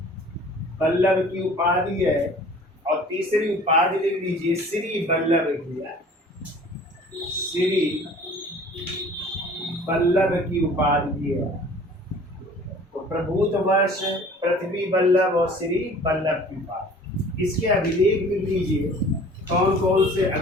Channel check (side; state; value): both; normal; correlation 0.48